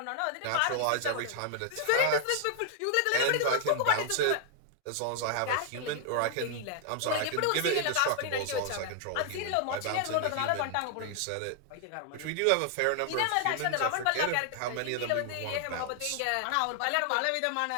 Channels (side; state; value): both; different; correlation 0.00